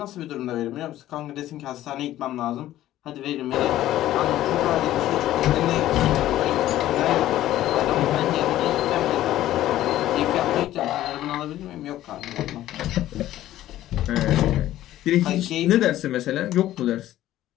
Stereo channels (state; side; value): quieter; right; 13.9 dB